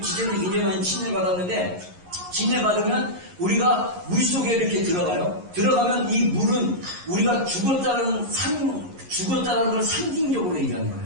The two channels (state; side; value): late; left; 11 ms